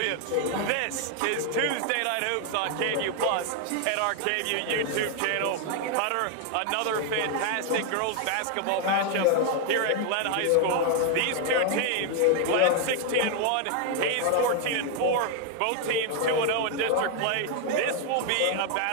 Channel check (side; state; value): both; different; correlation 0.00